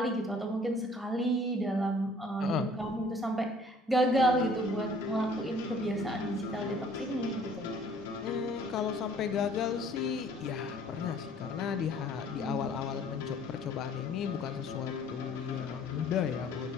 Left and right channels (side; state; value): both; normal; correlation 0.55